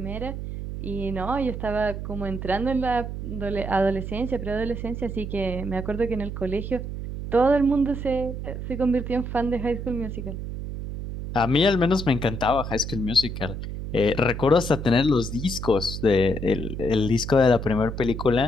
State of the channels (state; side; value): noise; right; hum, 6 dB below the sound